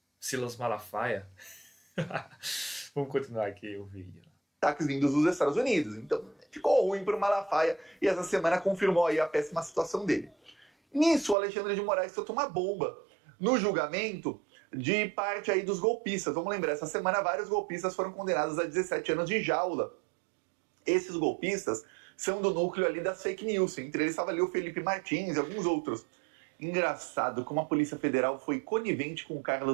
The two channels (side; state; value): left; drops out; at 11.4 s